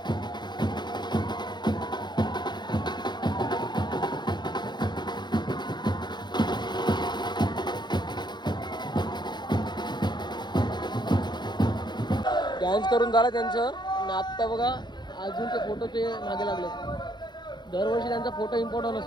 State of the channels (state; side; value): late; right; 0.21 ms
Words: डान्स करून झाला त्यांचं. आणि आत्ता बघा अजून ते फोटोचे मागे लागले. दरवर्षी त्यांचा फोटो इम्पॉर्टंट